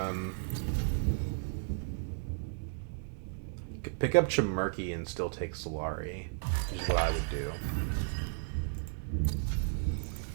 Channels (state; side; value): silent; left; digital silence